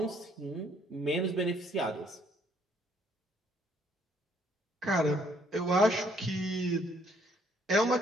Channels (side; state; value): both; normal; correlation 0.66